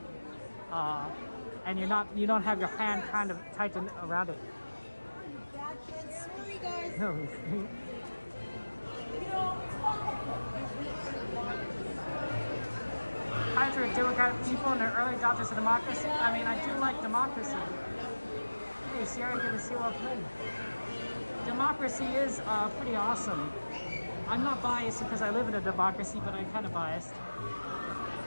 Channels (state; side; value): inverted; both; correlation -1.00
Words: and you don't have your hand kind of tightened around it. Sorry, guys. No. Pirates are democratic people and they're early adopters of democracy. I mean, I do like democracy. Hey, Sierra, good to see you. Welcome in. Democracy is pretty awesome. I'm not biased because I live in a democracy, but I'm kind of biased.